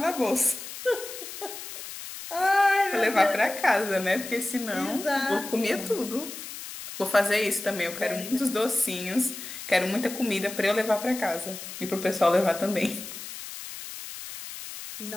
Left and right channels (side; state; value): left; noise; hiss, 11 dB below the sound